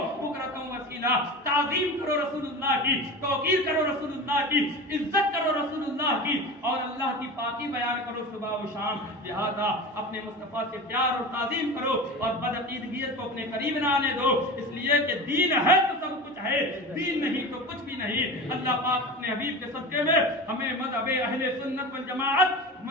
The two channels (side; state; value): both; normal; correlation 0.30